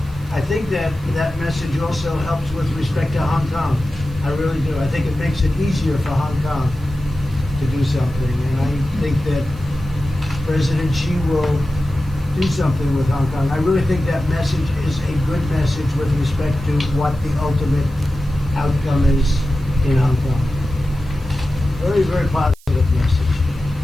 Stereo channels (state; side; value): noise; right; hiss, 26 dB below the sound